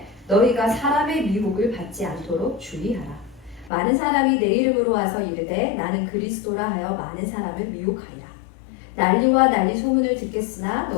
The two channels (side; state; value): right; drops out; at 3.7 s